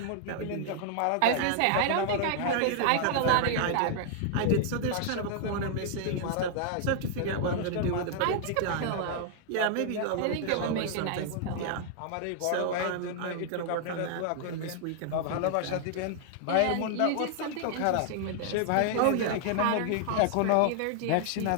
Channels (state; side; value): different; both; correlation 0.00